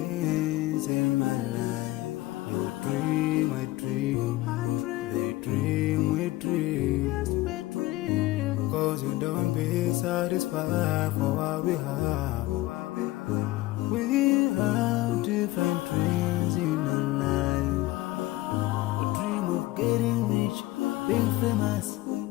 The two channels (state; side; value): quieter; right; 18.0 dB